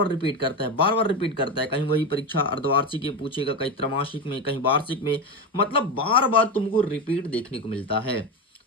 रिपीट करता है, बार बार रिपीट करता है। कहीं वही परीक्षा अर्धवार्षिक में पूछेगा, कहीं त्रैमासिक में, कहीं वार्षिक में, मतलब बार बार तुमको रिपीट देखने को मिलता है।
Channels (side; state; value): both; normal; correlation 0.17